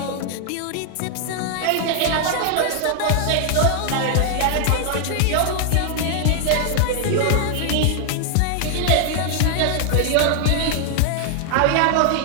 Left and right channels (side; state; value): both; different; correlation 0.00